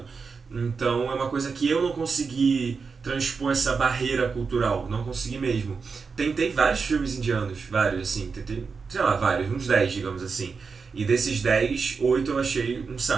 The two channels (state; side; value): quieter; left; 5.1 dB